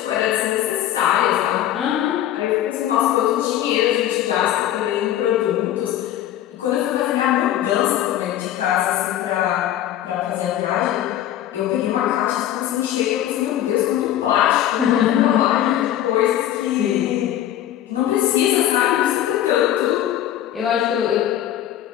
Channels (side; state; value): right; quieter; 12.0 dB